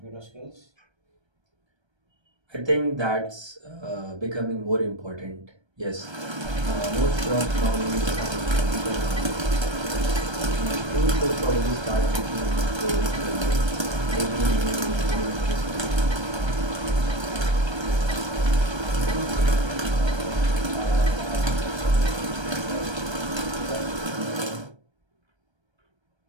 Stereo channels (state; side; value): late; left; 1.3 ms